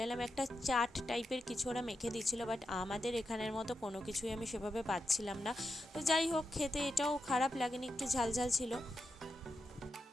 এলাম, একটা চাট টাইপের কিছু ওরা মেখে দিচ্ছিলো, বাট আমাদের এখানের মতো কোনো কিছুই আমি সেভাবে পাচ্ছিলাম না। তো যাই হোক, খেতে এটাও খারাপ লাগেনি, একটু ঝাল ঝাল ছিল।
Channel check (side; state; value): both; normal; correlation 0.87